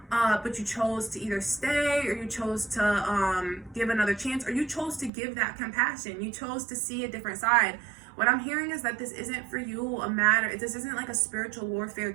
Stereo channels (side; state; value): left; drops out; at 5.1 s